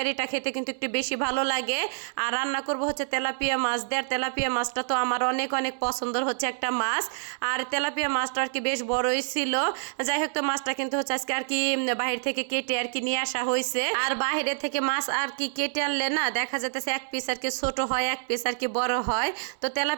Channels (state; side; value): silent; left; 60 dB below the other